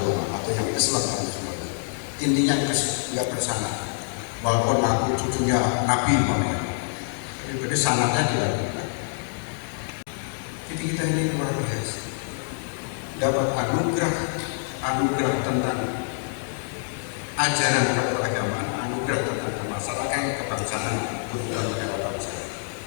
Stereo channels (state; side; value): silent; right; digital silence